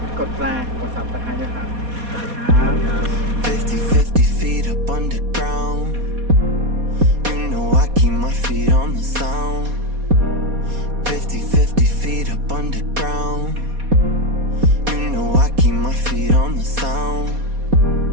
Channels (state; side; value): late; left; 4.2 ms